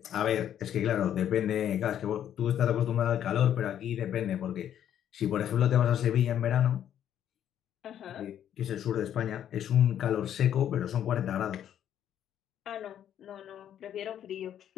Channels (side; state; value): right; quieter; 10.2 dB